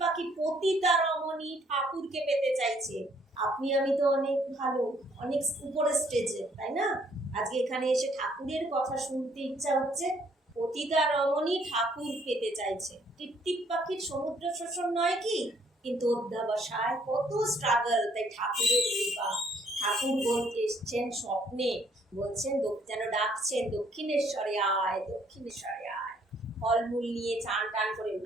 পাখি পতিতা রমণী ঠাকুরকে পেতে চাইছে। আপনি আমি তো অনেক ভালো, অনেক উপরে স্টেজে, তাই না? আজকে এখানে এসে ঠাকুরের কথা শুনতে ইচ্ছা হচ্ছে, পতিতা রমণী ঠাকুর পেতে চাইছে। টিপটিপ পাখির সমুদ্র শোষণ নয় কি? কিন্তু অধ্যাবসায় কত স্ট্রাগল, তাই ঠাকুরের কৃপা। ঠাকুর বলতে এসছেন স্বপ্নে, বলছেন যেন ডাকছেন, দক্ষিণেশ্বরে আয়, দক্ষিণেশ্বরে আয়, ফলমূল নিয়ে চান টান করে।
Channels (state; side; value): normal; both; correlation 0.65